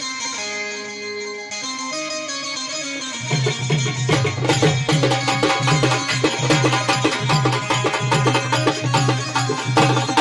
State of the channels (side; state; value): both; identical; correlation 1.00